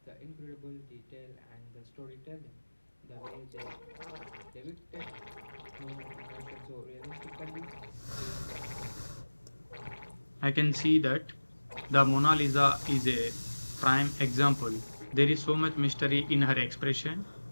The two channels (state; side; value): inverted; both; correlation -1.00